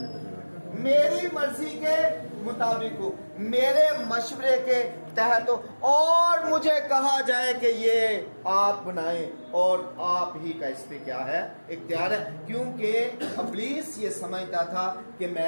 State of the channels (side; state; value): both; inverted; correlation -1.00